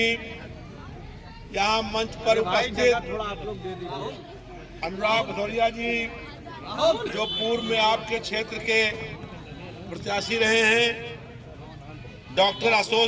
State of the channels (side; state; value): both; identical; correlation 1.00